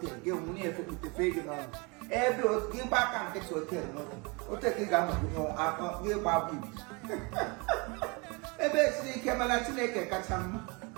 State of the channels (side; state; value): left; quieter; 29.0 dB